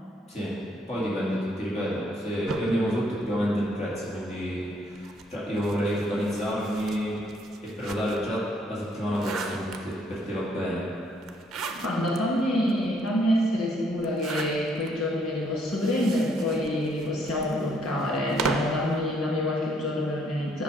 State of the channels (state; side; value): normal; both; correlation 0.68